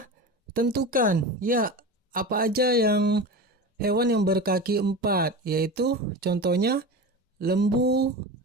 tentukan. Ya, apa aja yang hewan yang berkaki 4, yaitu contohnya lembu,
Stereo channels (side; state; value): both; normal; correlation 0.28